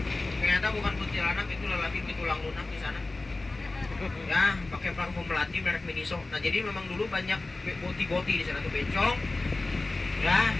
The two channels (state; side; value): quieter; right; 3.2 dB